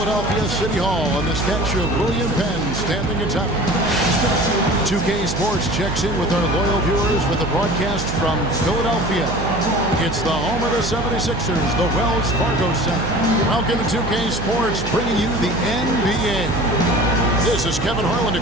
City Hall and the statue of William Penn standing atop it. 2K Sports checks in with our loyal viewers with a broadcast from Philadelphia. It's the home of the 76ers, the Wells Fargo Center. Welcome to 2K Sports, bringing you the NBA. This is Kevin Harlan to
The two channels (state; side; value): noise; right; hum, 6 dB below the sound